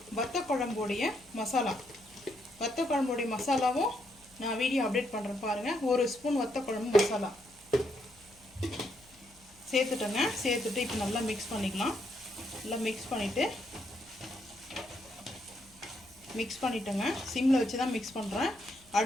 வத்த குழம்புடைய மசாலா, வத்த குழம்புடைய மசாலாவும் நான் வீடியோ அப்டேட் பண்ணுறேன் பாருங்கள். 1 ஸ்பூன் வத்த குழம்பு மசாலா சேர்த்துட்டேங்க. சேர்த்துட்டு இப்போ நல்லா மிக்ஸ் பண்ணிக்கலாம். நல்லா மிக்ஸ் பண்ணிட்டேங்க. சிம்மில் வச்சு தான் மிக்ஸ் பண்ணுறேன்.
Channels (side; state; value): left; noise; hum, 28 dB below the sound